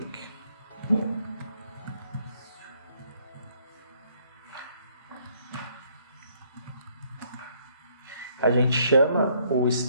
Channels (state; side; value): inverted; both; correlation -0.67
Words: A gente chama o